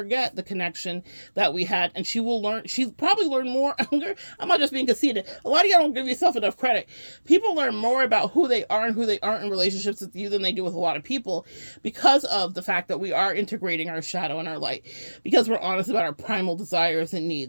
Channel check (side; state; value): both; inverted; correlation -1.00